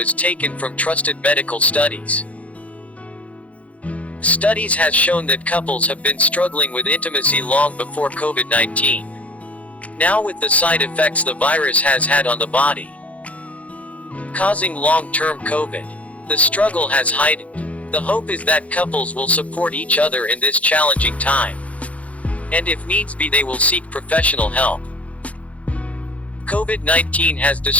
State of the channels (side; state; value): right; late; 0.066 ms